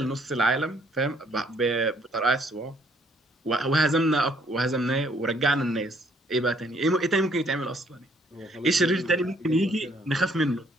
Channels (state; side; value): normal; both; correlation 0.65